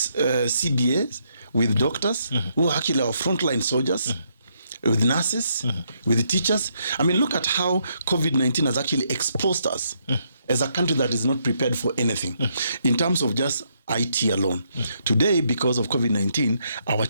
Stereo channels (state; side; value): inverted; both; correlation -0.75